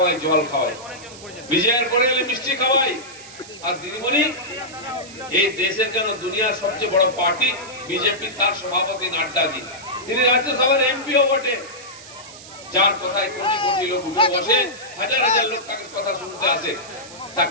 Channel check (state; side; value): noise; right; hiss, 17 dB below the sound